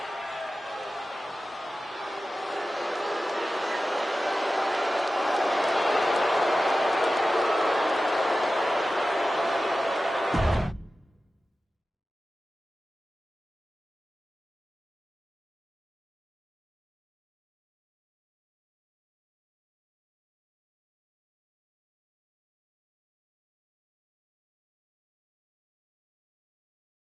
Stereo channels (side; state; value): both; normal; correlation 0.94